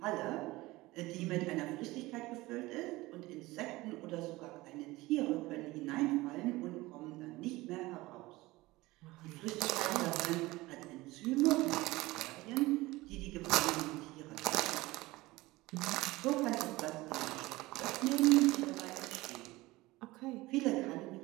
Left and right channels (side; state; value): left; quieter; 19.9 dB